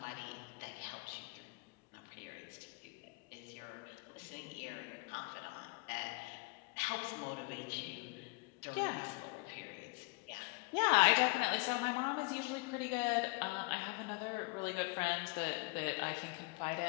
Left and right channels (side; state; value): right; quieter; 28.7 dB